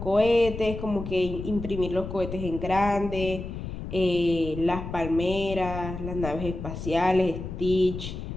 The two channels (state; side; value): noise; left; rumble, 8 dB below the sound